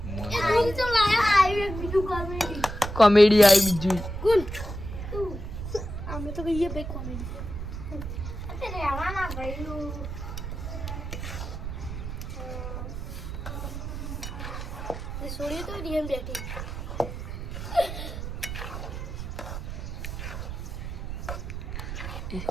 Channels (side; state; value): right; noise; rumble, 6 dB below the sound